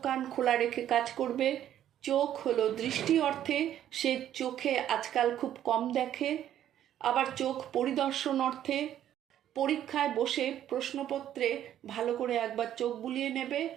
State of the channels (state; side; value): quieter; left; 11.2 dB